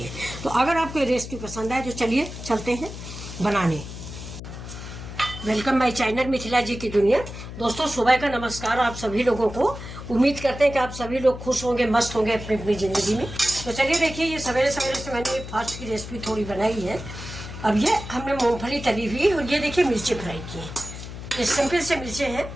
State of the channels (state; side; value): noise; left; hum, 10 dB below the sound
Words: तो अगर आपको ये रेसिपी पसंद आए तो चलिए चलते हैं बनाने। वेलकम माय चैनल मिथिला जी की दुनिया। दोस्तों सुबह का नमस्कार आप सभी लोगों को। उम्मीद करते हैं कि आप सभी लोग खुश होंगे, मस्त होंगे अपनी अपनी ज़िंदगी में। तो चलिए देखिए, ये सवेरे सवेरे से मैंने ये फास्ट की रेसिपी थोड़ी बनाई है। अब ये हमने मूंगफली तली हुई और ये देखिए मिर्ची फ्राई की है। ये सिंपल से मिर्चें हैं,